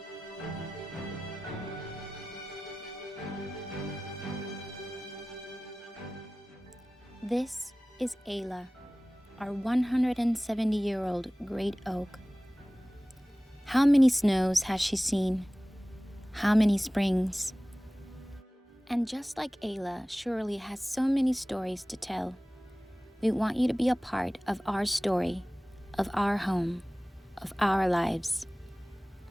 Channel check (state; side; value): normal; both; correlation 0.98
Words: This is Ayla, our 170-year-old great oak. How many snows has she seen? How many springs? And just like Ayla surely has so many stories to tell, we want you to be a part of our story, of our home, of our lives.